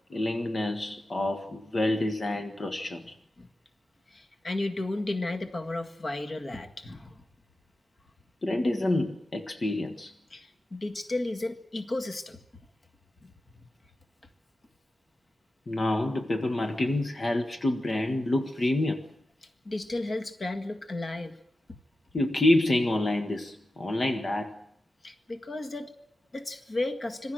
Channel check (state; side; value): normal; both; correlation 0.92